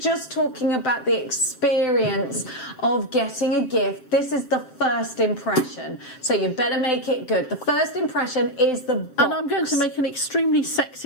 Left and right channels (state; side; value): late; right; 7.8 ms